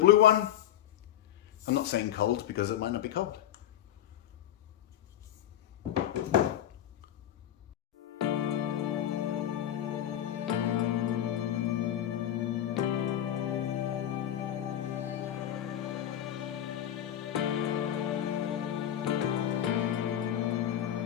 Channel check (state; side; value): quieter; right; 11.4 dB